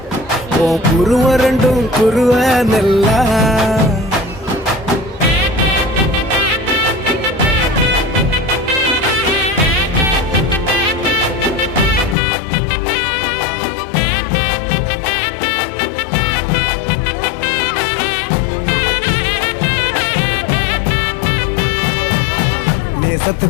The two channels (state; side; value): drops out; right; at 12.2 s